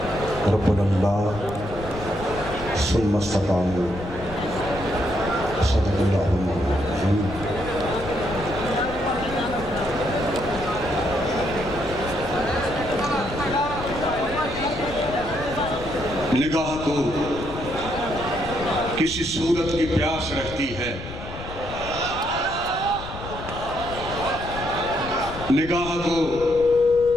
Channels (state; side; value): noise; left; rumble, 11 dB below the sound